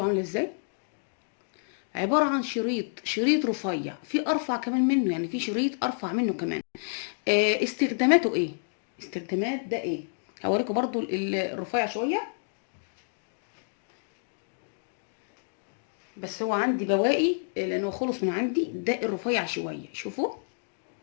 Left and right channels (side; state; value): right; silent; digital silence